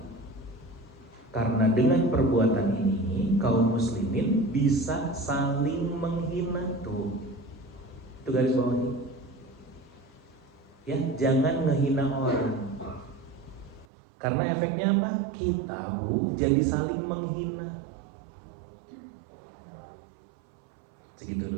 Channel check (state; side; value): drops out; left; at 13.9 s